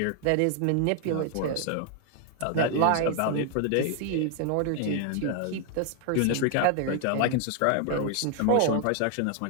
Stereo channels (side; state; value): both; different; correlation 0.00